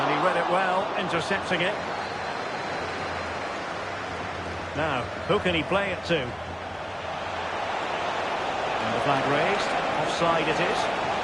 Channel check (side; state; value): both; identical; correlation 1.00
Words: he read it well, intercepting it. Now, who can he play it to? And the flag raised. Offside it is.